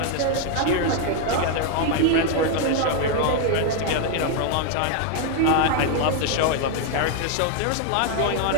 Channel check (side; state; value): both; different; correlation 0.01